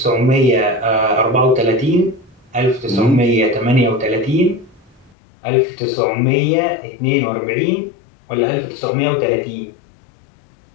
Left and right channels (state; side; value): drops out; right; at 5.1 s